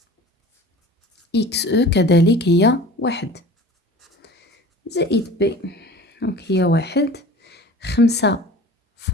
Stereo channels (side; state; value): both; normal; correlation 0.41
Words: x كذلك هي 1 زائد p. دونك هي 1، 5